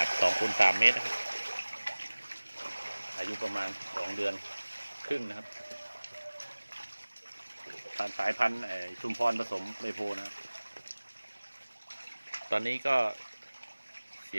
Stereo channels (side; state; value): both; inverted; correlation -1.00